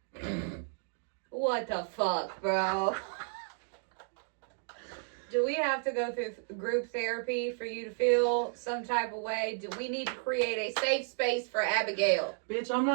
What the fuck, bro? Do we have to go through group therapy for you to feel some type of way? Do we need to create a safe space for Abigail? Bitch, I'm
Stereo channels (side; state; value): left; silent; 56 dB below the other